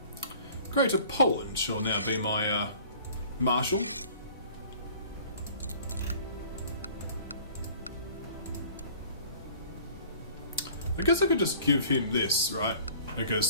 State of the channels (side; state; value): both; inverted; correlation -0.49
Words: Greater Poland shall now be my marshal. I guess I could just give him this, right?